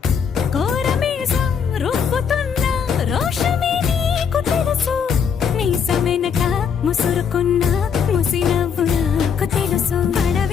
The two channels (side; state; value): right; quieter; 6.9 dB